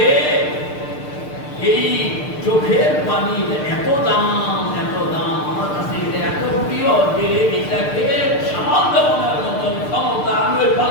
এই চোখের পানি এত দাম আমার কাছে এটা এত প্রিয় যে এটাকে সামাল দেওয়ার মতন ক্ষমতা আমি ওই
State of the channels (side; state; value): right; late; 6.6 ms